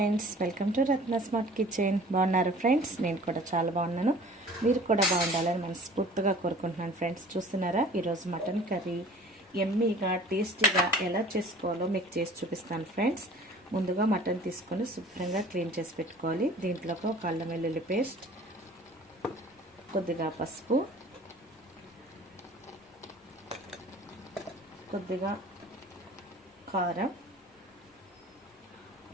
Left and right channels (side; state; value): both; normal; correlation 0.47